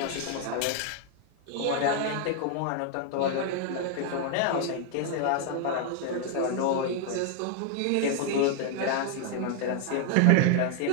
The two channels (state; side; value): different; both; correlation 0.00